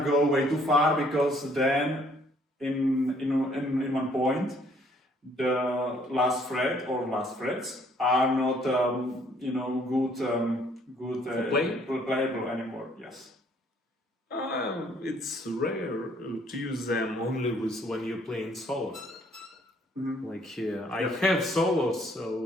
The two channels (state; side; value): normal; both; correlation 0.63